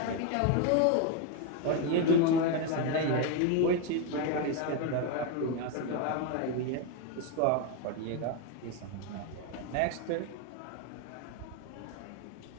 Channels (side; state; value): both; different; correlation 0.02